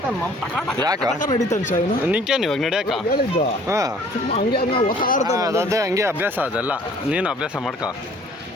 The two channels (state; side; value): normal; both; correlation 0.55